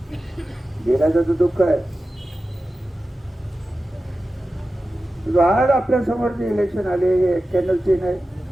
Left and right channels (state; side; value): normal; both; correlation 0.94